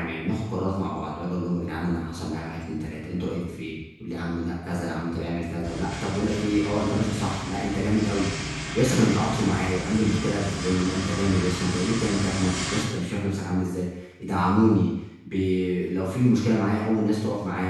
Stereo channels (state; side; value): identical; both; correlation 1.00